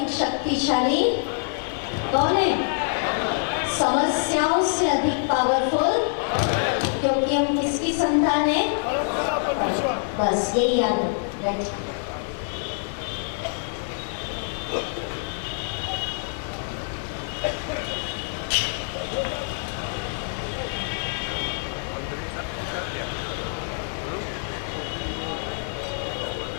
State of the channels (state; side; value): silent; right; 55 dB below the other